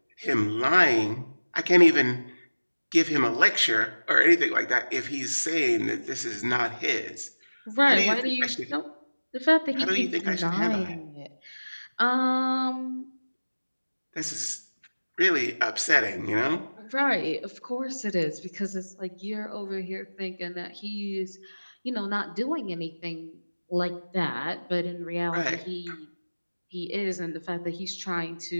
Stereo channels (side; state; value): both; inverted; correlation -1.00